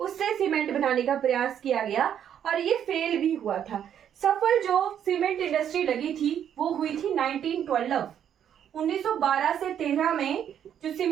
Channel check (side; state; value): left; quieter; 9.4 dB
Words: उससे सीमेंट बनाने का प्रयास किया गया और ये फेल भी हुआ था। सफल जो सीमेंट इंडस्ट्री लगी थी वो हुई थी 1912, 1912 से 13 में जो